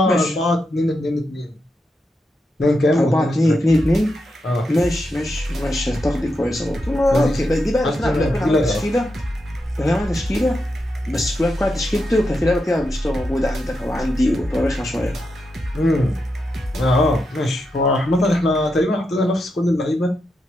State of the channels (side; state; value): both; normal; correlation 0.85